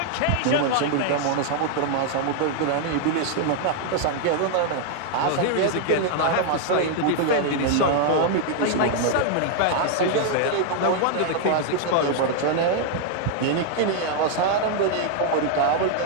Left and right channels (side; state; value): both; different; correlation 0.00